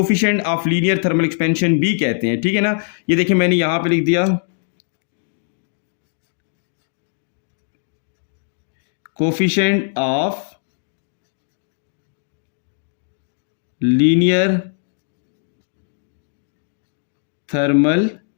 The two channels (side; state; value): right; silent; digital silence